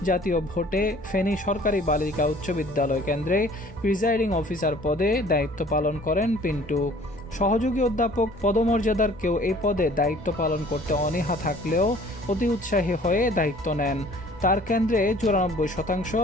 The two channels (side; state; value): both; normal; correlation 0.52